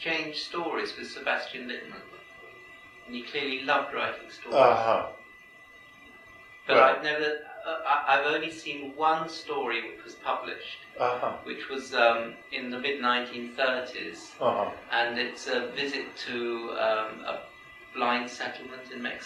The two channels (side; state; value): both; identical; correlation 1.00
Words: stories with Sebastian Littman, and he clearly loved writing stories. But right. I've only seen one story which was published, which was in the mid-1930s, and it's a visit to a blind settlement in